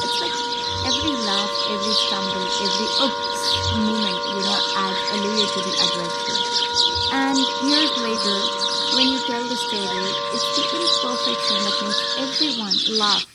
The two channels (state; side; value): identical; both; correlation 1.00